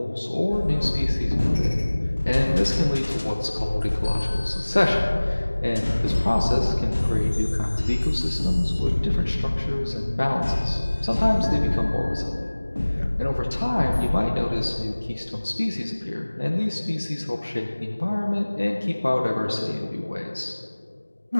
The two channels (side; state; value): both; inverted; correlation -1.00